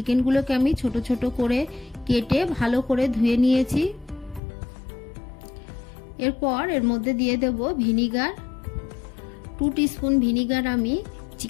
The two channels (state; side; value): drops out; right; at 4.4 s